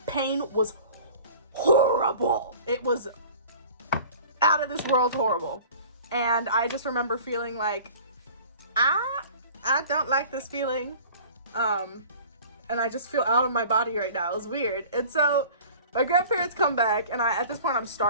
pain was horrible. It was out of this world horrible. And I just remember feeling like, I don't like this feeling. And I just feel out of my body right now. It was weird. And so my grandparents come back, and at this point I'm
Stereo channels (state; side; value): inverted; both; correlation -0.44